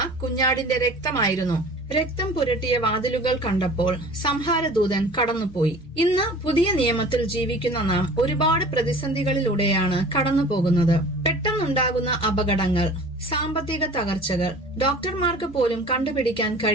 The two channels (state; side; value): normal; both; correlation 0.44